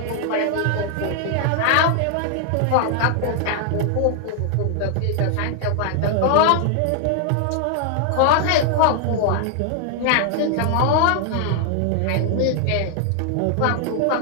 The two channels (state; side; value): different; both; correlation 0.00